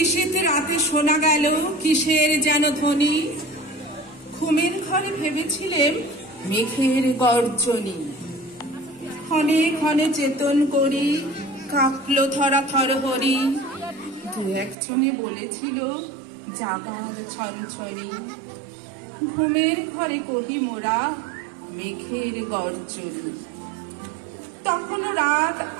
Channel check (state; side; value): drops out; left; at 14.8 s